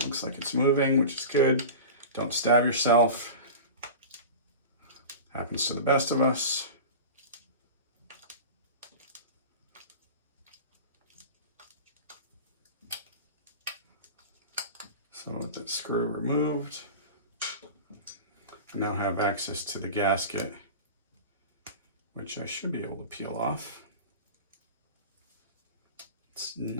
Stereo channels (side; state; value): both; inverted; correlation -0.32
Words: looks like it's moving, which is good. Don't stab yourself. Happens to the best of us. So with that screw removed, I now have access to the gasket, which I should be able to peel off. It's